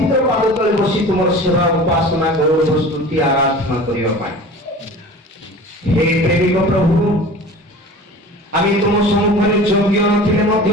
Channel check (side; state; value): both; normal; correlation 0.39